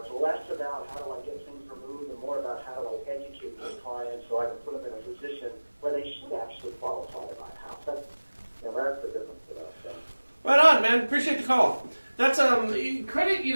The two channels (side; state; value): both; inverted; correlation -1.00